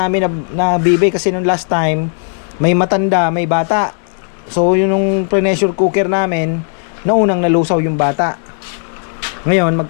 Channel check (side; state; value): right; silent; 58 dB below the other